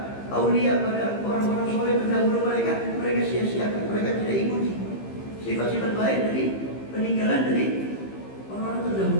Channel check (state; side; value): late; right; 15 ms